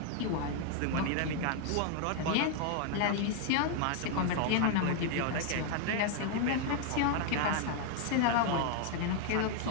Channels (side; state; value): both; different; correlation 0.00